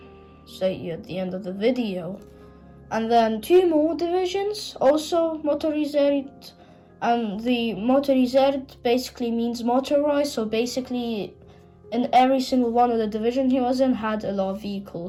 you at the end of the video. And then 2 more divisions, also motorisiert. And the motorisiert basically means motorized, so basically in every single one of the division he was in had a lot of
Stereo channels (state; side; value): identical; both; correlation 1.00